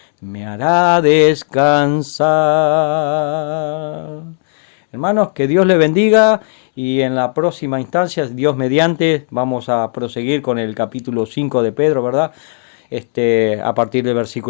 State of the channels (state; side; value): silent; right; 70 dB below the other